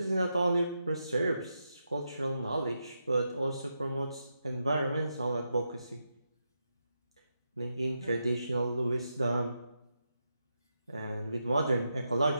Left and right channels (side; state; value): both; inverted; correlation -0.85